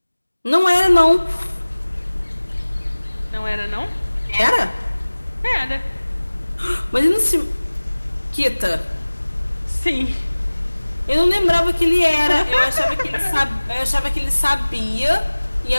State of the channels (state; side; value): inverted; both; correlation -1.00